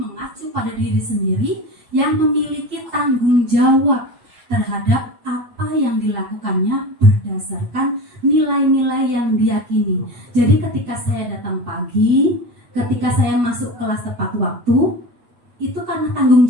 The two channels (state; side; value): late; left; 8.7 ms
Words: pada diri sendiri yang memiliki tanggung jawab terhadap apa yang dilakukannya berdasarkan nilai-nilai yang diyakini. Jadi ketika saya datang pagi, ketika saya masuk kelas tepat waktu, itu karena tanggung